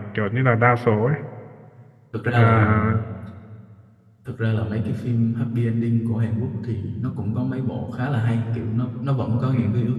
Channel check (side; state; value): both; identical; correlation 1.00